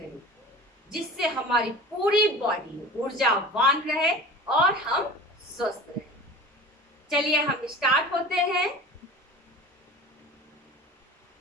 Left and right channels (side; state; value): both; normal; correlation 0.38